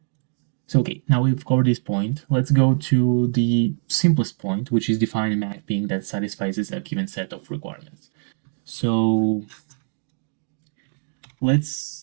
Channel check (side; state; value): left; silent; digital silence